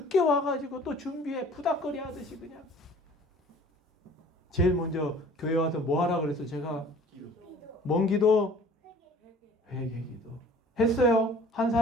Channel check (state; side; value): normal; both; correlation 0.49